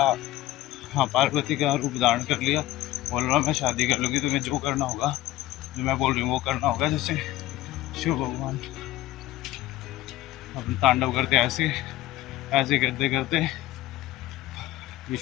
हाँ, पार्वती का रूप धारण कर लिया, बोल रहा मैं शादी कर लूँगी, तुम्हें जो करना होगा, जो मैं बोल रही हूँ वो करना होगा। जैसे शिव भगवान अपने तांडव करते ऐसे करते करते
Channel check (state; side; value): quieter; right; 15.6 dB